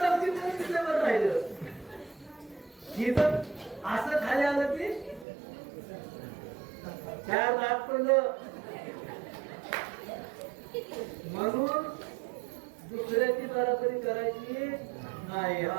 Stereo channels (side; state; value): left; drops out; at 5.2 s